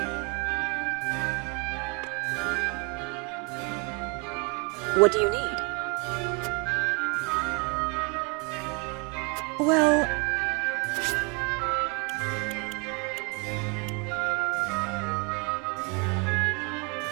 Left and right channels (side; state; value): left; quieter; 32.4 dB